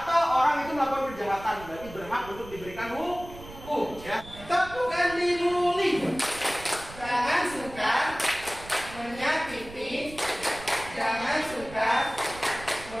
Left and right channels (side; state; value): right; noise; rumble, 16 dB below the sound